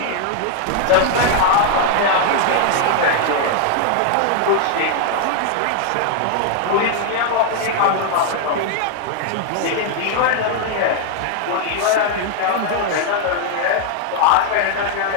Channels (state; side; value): different; both; correlation 0.00